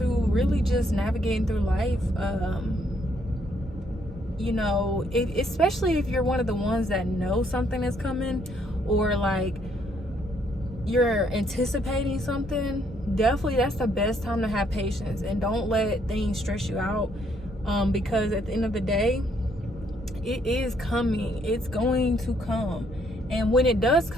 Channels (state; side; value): normal; both; correlation 0.70